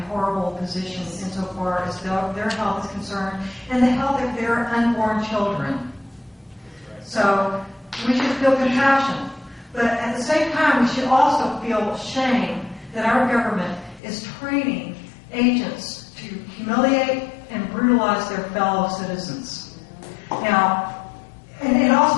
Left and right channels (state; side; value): drops out; right; at 14.0 s